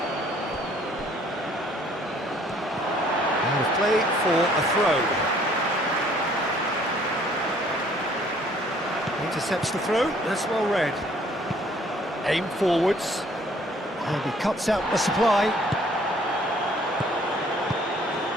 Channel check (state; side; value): normal; both; correlation 0.59